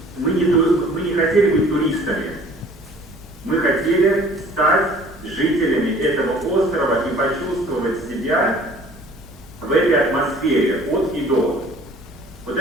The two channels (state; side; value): normal; both; correlation 0.51